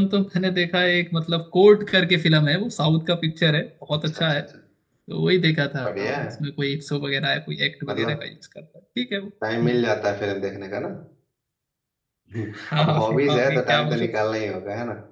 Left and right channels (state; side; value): identical; both; correlation 1.00